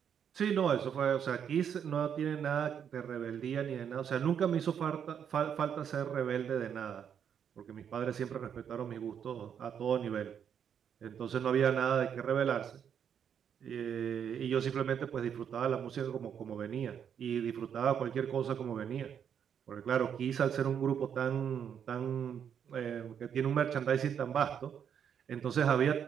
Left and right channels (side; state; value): left; quieter; 8.2 dB